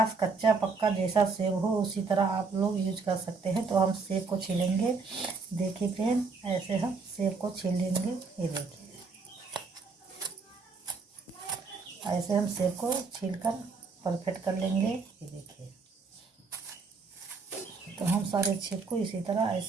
कच्चा पक्का जैसा सेब हो उसी तरह आप लोग यूज कर सकते हैं। तो हम सेब को छीलेंगे। देखिए फ्रेंड, ऐसे हम सेब को छील लेंगे। ये देखिए, ऐसे हम सेब को छीलकर परफेक्ट कर लेंगे। ये देखिए, तो हम सारे सेब को इसी तरह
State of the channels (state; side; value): quieter; left; 4.5 dB